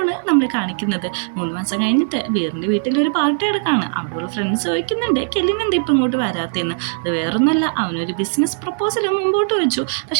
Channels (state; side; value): silent; left; digital silence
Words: നമ്മൾ കാണിക്കുന്നത്. 3 മാസം കഴിഞ്ഞിട്ട് വീറിൻ്റെ വീട്ടിൽ ഒരു പാർട്ടി എടുക്കാണ്. അവിടെയുള്ള ഫ്രണ്ട്സ് ചോദിക്കുന്നുണ്ട് കെലിന് എന്താ ഇപ്പം ഇങ്ങോട്ട് വരാത്തതെന്ന്. അത് വേറൊന്നുമല്ല, അവനൊരു ബിസിനസ് പ്രപ്പോസൽ മുമ്പോട്ട് വെച്ചു,